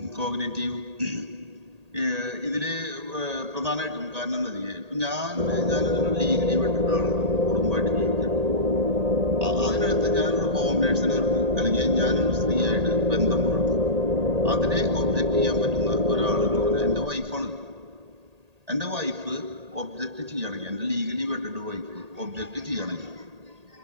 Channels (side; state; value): left; late; 1.8 ms